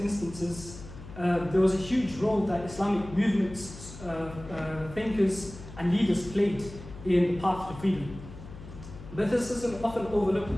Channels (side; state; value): left; noise; hum, 14 dB below the sound